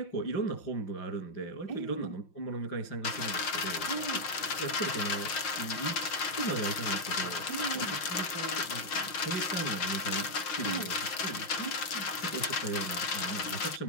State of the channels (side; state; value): right; late; 5.7 ms